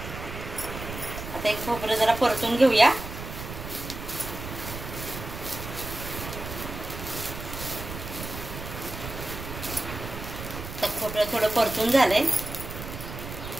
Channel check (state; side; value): noise; right; rumble, 9 dB below the sound